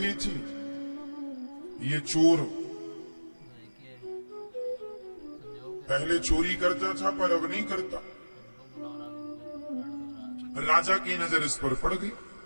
थी। ये चोर पहले चोरी करता था पर अब नहीं करता। राजा की नजर इस पर पड़ गई।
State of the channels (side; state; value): both; inverted; correlation -1.00